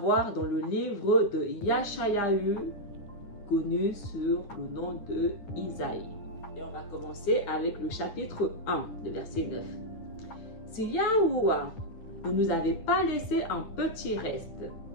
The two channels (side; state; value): right; late; 9.9 ms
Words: dans le livre de Yashayahu, connu sur le nom de Isaïe. Et on va commencer avec le chapitre 1, le verset 9. Si Yahuwah ne nous avait pas laissé un petit reste,